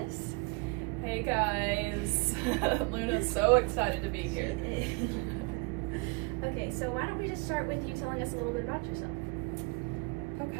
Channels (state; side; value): quieter; left; 27.3 dB